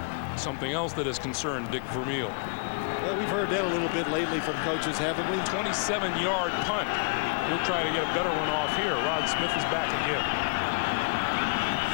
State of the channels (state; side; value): quieter; right; 39.0 dB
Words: Something else that has concerned Dick Vermeil. Well, we've heard that a little bit lately from coaches, haven't we? 27-yard punt. He'll try to get a better one off here. Rod Smith is back again.